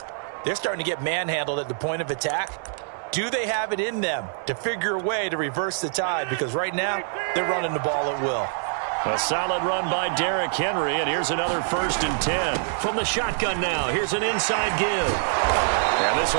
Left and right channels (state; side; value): silent; left; 62 dB below the other